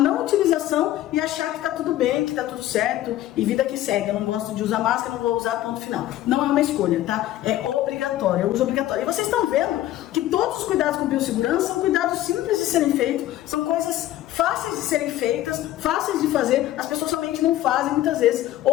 utilização e achar que tá tudo bem, que tá tudo certo e vida que segue. Eu não gosto de usar máscara, não vou usar, ponto final. Não é uma escolha, tá? É obrigatório, é uso obrigatório. E vocês estão vendo que todos os cuidados com biossegurança são cuidados simples de serem feitos, são coisas fáceis de serem feitas, fáceis de fazer. As pessoas somente não fazem muitas vezes,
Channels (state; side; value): quieter; right; 14.0 dB